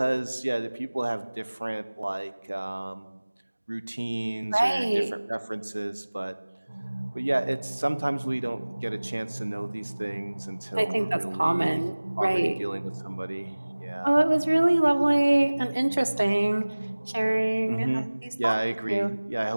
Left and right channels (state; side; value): inverted; both; correlation -1.00